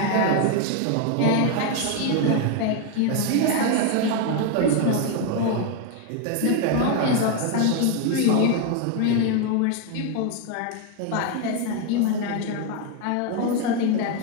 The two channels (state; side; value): different; both; correlation 0.01